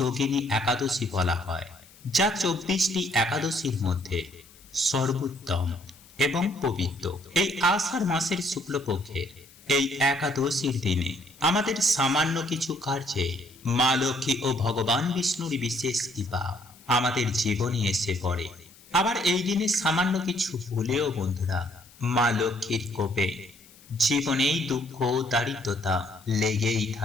একাদশী বলা হয়, যা 24টি একাদশীর মধ্যে সর্বোত্তম এবং পবিত্র। এই আষাঢ় মাসের শুক্লপক্ষের এই একাদশীর দিনে আমাদের সামান্য কিছু কার্যে মা লক্ষ্মী ও ভগবান বিষ্ণুর বিশেষ কৃপা আমাদের জীবনে এসে পড়ে। আবার এই দিনে সামান্য কিছু ভুলেও বন্ধুরা মা লক্ষ্মীর কোপে জীবনেই দুঃখ দারিদ্রতা লেগেই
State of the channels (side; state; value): left; noise; hiss, 25 dB below the sound